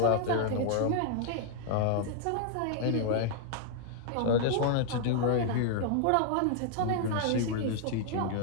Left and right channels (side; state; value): both; different; correlation 0.00